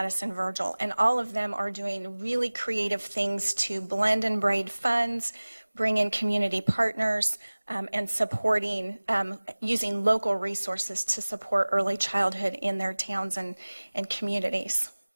Virgil. And all of them are doing really creative things to blend and braid funds, bring in community partners, and supporting, using local resources to support early childhood in their towns and communities.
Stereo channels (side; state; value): both; inverted; correlation -1.00